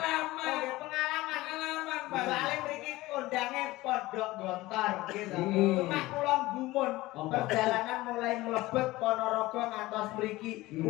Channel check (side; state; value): right; quieter; 18.8 dB